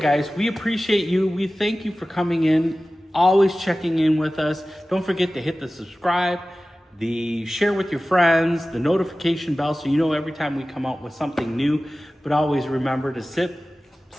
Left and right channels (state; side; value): normal; both; correlation 0.96